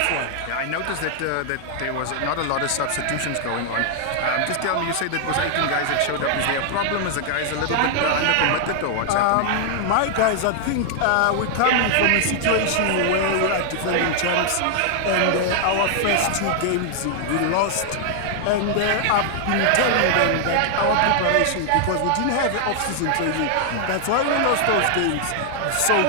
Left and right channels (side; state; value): both; different; correlation 0.00